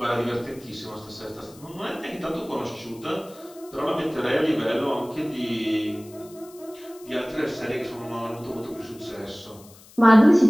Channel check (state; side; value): noise; left; hiss, 23 dB below the sound